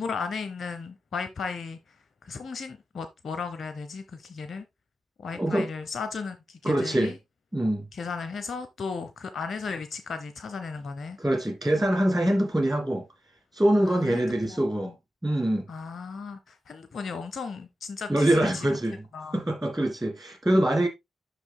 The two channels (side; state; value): both; normal; correlation 0.93